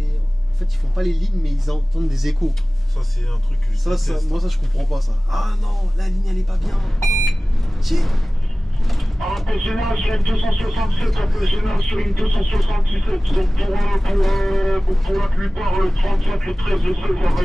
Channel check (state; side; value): normal; both; correlation 0.98